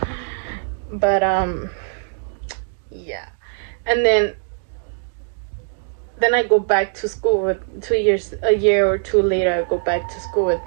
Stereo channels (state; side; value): silent; left; digital silence